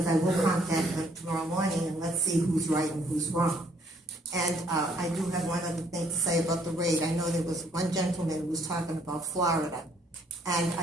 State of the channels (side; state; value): both; normal; correlation 0.65